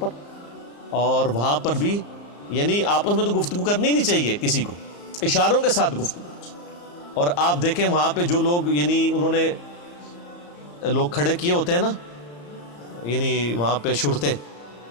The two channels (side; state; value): right; late; 34 ms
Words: اور وہاں پر بھی یعنی آپس میں تو گفتگو کرنی نہیں چاہیے کسی کو, اشاروں کے ساتھ گفتگو. اور آپ دیکھیں وہاں پہ جو لوگ یعنی انہوں نے لوگ کھڑے کیے ہوتے ہیں نا, یعنی وہاں پہ شرطے